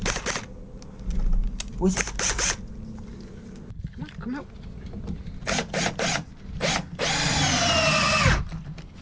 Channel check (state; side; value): identical; both; correlation 1.00